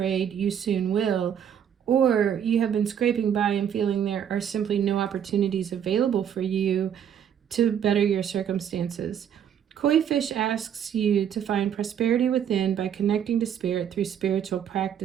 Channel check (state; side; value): quieter; left; 8.9 dB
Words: you soon will, or you have been scraping by and feeling there are simply no opportunities available for you to better your circumstances. Koi fish asks you to find prosperity within by connecting to spirit through spiritual